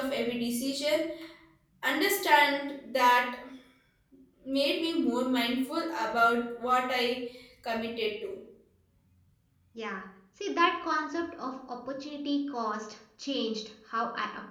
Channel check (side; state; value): both; identical; correlation 1.00